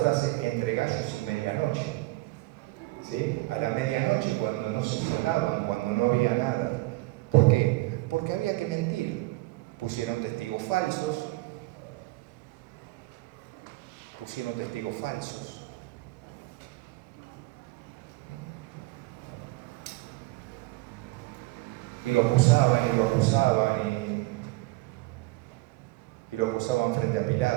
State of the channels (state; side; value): quieter; left; 21.1 dB